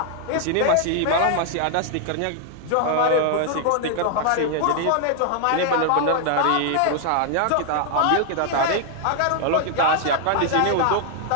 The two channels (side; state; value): both; different; correlation 0.00